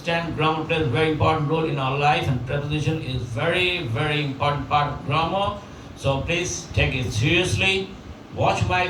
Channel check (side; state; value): both; identical; correlation 1.00